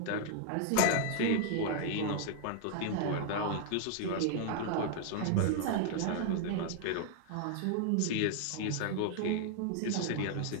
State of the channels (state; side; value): different; both; correlation -0.01